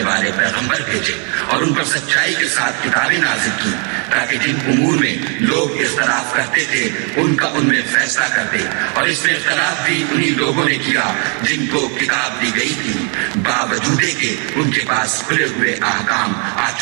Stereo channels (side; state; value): left; quieter; 37.7 dB